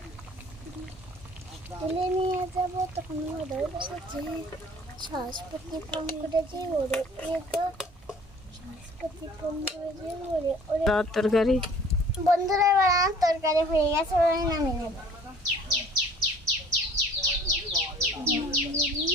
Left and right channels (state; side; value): normal; both; correlation 0.51